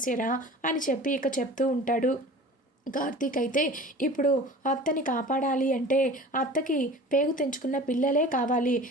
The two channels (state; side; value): normal; both; correlation 0.40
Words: అని చెప్పి ఇక చెప్తూ ఉంటాడు. కార్తీక్ అయితే ఇప్పుడు అత్తని కాపాడాలి అంటే అత్తకి పేగు తెంచుకున్న పిల్లలే కావాలి,